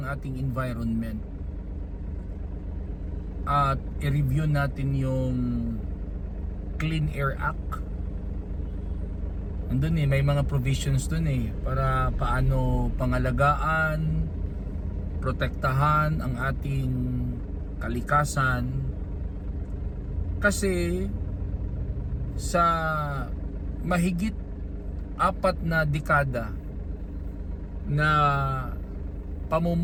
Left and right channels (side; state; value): both; identical; correlation 1.00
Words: ating environment at i-review natin yung Clean Air Act. Andun may mga provisions dun para paano pangalagaan, protektahan ang ating kalikasan. Kasi sa mahigit 4 na dekada na